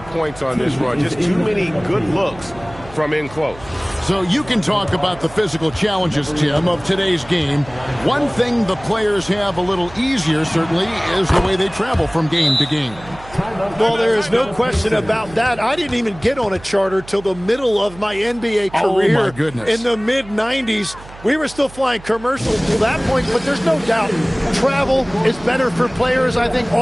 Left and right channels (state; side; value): noise; right; hum, 19 dB below the sound